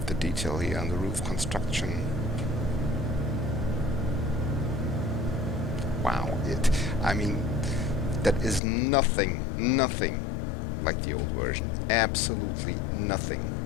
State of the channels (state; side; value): drops out; right; at 8.6 s